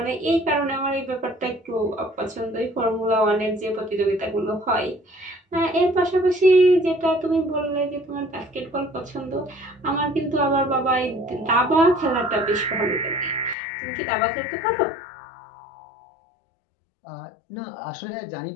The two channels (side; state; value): right; drops out; at 13.6 s